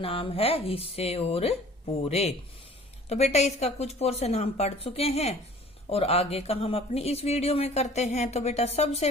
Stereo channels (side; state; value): both; normal; correlation 0.49